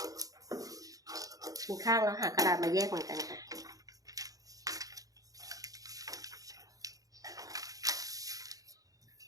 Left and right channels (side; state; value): left; late; 0.17 ms